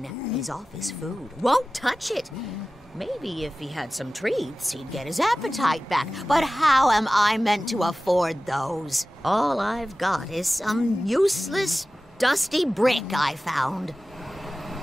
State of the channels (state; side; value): normal; both; correlation 0.96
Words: He's off his food, won't touch it. Maybe if he had some treats, he'd get his appetite back. But how am I meant to afford those? All I've got is some useless, dusty brick I found.